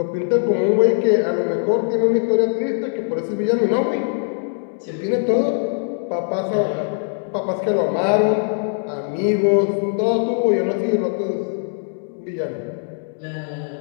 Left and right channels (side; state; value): right; silent; 65 dB below the other